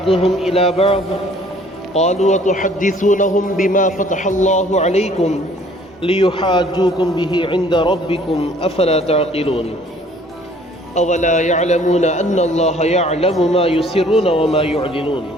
إلى بعض قالوا وتحدثونهم بما فتح الله عليكم ليحاجوكم به عند ربكم أفلا تعقلون أولا يعلمون أن الله يعلم ما يسرون وما يعلنون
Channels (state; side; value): normal; both; correlation 0.56